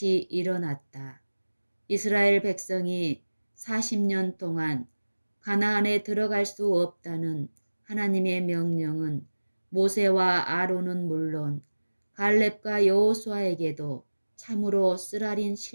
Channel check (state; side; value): inverted; both; correlation -1.00